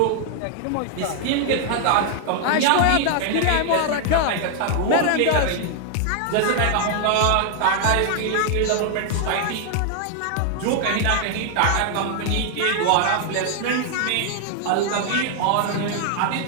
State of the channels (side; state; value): both; different; correlation 0.00